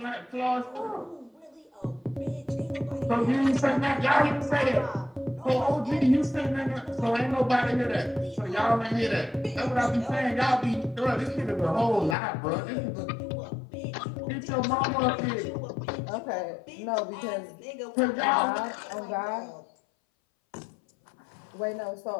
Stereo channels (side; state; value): right; drops out; at 12.2 s